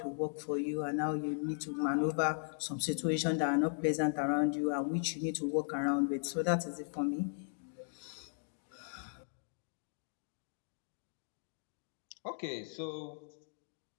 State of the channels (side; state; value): right; silent; digital silence